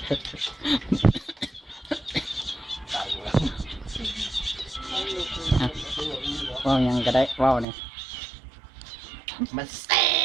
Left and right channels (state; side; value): drops out; left; at 7.7 s